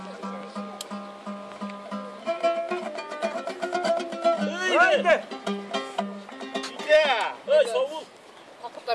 Haydi. Ey, savul.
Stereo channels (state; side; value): identical; both; correlation 1.00